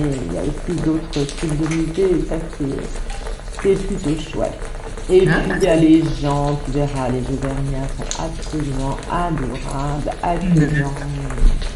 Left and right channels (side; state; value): both; identical; correlation 1.00